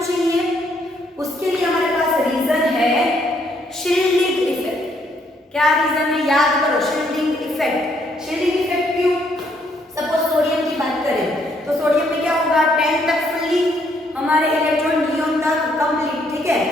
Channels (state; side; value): normal; both; correlation 0.70